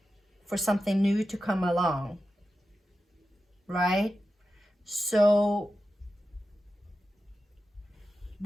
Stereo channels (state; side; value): normal; both; correlation 0.92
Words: for something new to come along, right? So